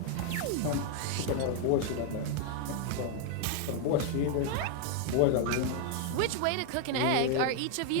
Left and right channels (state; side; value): different; both; correlation 0.00